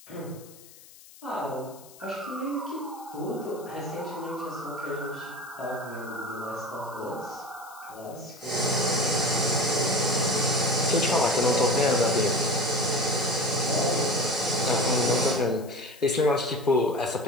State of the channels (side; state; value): left; noise; hiss, 21 dB below the sound